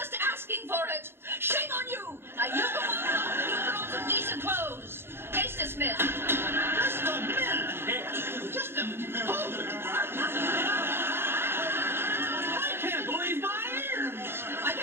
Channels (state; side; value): late; left; 0.11 ms